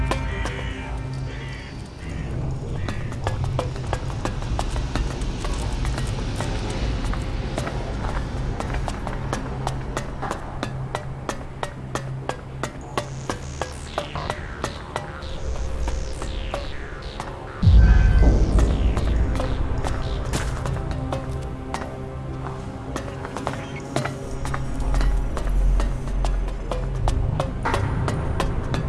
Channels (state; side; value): identical; both; correlation 1.00